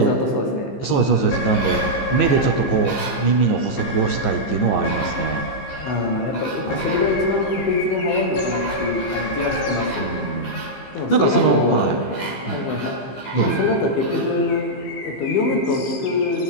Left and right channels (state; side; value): late; right; 15 ms